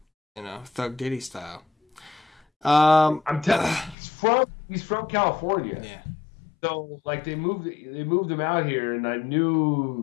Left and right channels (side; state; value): right; drops out; at 4.0 s